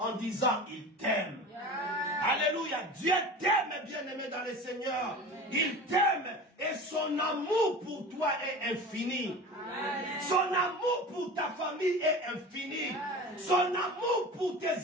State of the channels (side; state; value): both; normal; correlation 0.34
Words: disant il t'aime. Alléluia. Dieu t'aime, bien-aimé dans le Seigneur. Il t'aime et son amour pour toi est infini. Son amour pour ta famille est infini. Son amour pour